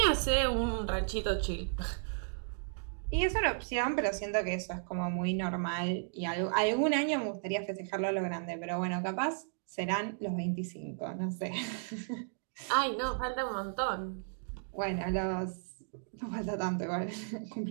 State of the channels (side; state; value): left; silent; digital silence